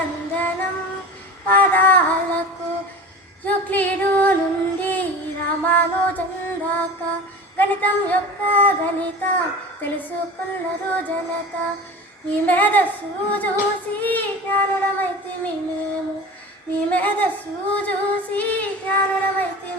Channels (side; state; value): both; normal; correlation 0.34